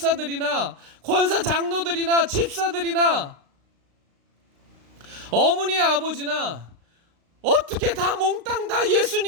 권사 장로들이나 집사들이나 어머니 아버지나 어떻게 다 몽땅 다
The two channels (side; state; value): left; late; 35 ms